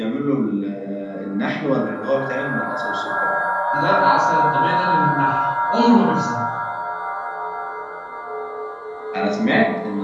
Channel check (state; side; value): identical; both; correlation 1.00